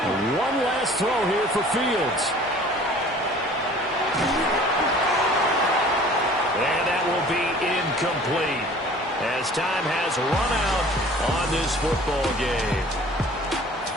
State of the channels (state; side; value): normal; both; correlation 0.49